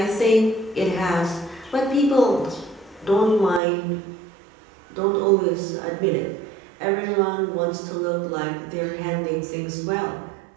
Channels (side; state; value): left; drops out; at 3.6 s